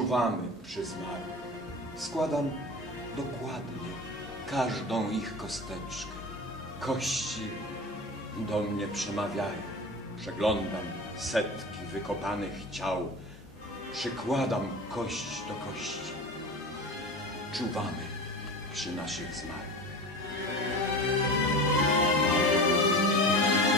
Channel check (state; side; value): normal; both; correlation 0.32